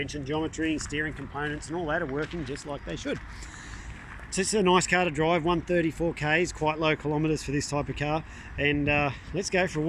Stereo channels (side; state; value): both; identical; correlation 1.00